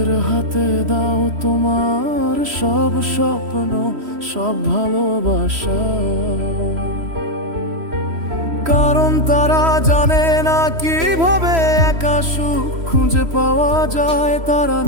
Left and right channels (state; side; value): late; left; 3.1 ms